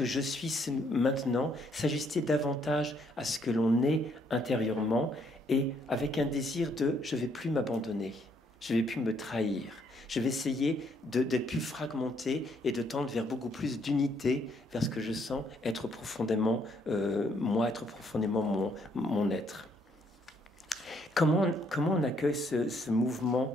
je suis maintenant? S'ajuster davantage à ce que l'on est intérieurement et avec un désir de je ne vais plus m'abandonner, je ne vais plus me trahir. Je vais essayer d'être plus fragmenté et de tendre vers beaucoup plus d'unité, vers ce que je sens être profondément moi, être profondément mon être. Comment on accueille ce mouvement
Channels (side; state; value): both; normal; correlation 0.69